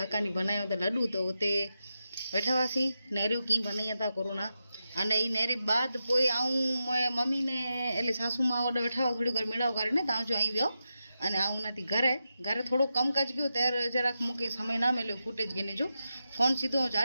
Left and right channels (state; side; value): inverted; both; correlation -0.89